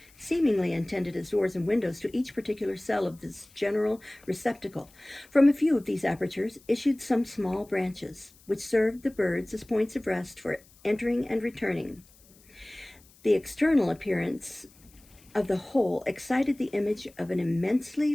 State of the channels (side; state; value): left; noise; hiss, 27 dB below the sound